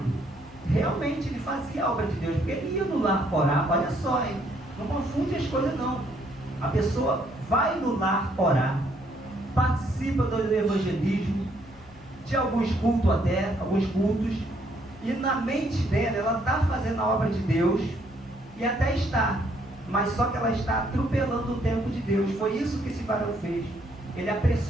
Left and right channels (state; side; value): noise; left; hum, 23 dB below the sound